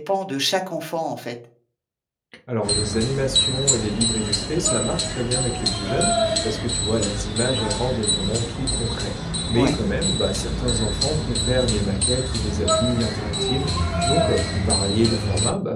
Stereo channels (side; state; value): both; identical; correlation 1.00